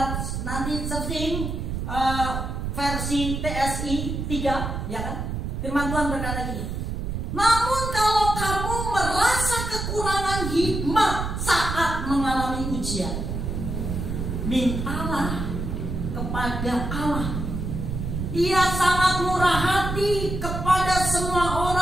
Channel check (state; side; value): noise; right; rumble, 3 dB below the sound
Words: nanti searching versi TSI 3, ya kan? Firman Tuhan berkata gini. Namun kalau kamu merasa kekurangan hikmat saat mengalami ujian, mintalah kepada Allah. Ia sangat murah hati kepada semua